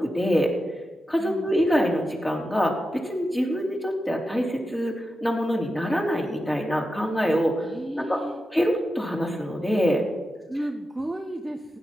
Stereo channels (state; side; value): normal; both; correlation 0.90